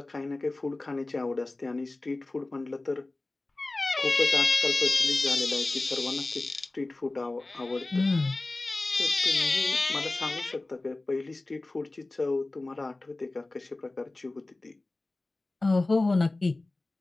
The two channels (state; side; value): quieter; right; 3.0 dB